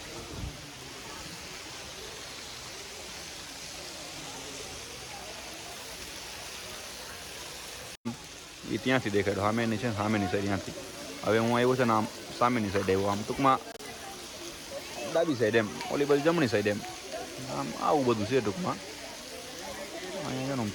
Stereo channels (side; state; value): both; identical; correlation 1.00